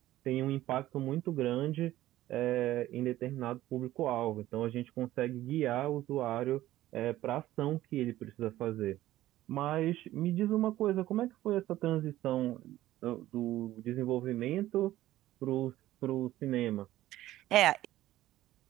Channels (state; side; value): quieter; left; 14.8 dB